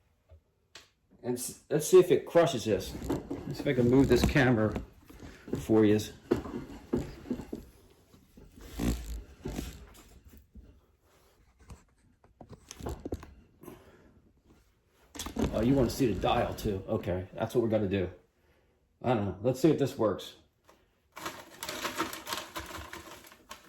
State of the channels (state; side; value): identical; both; correlation 1.00